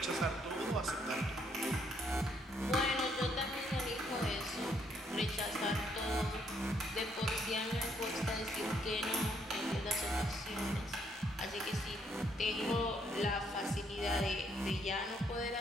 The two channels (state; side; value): normal; both; correlation 0.71